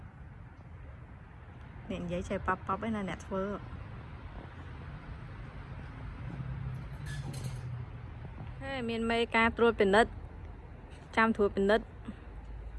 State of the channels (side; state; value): both; identical; correlation 1.00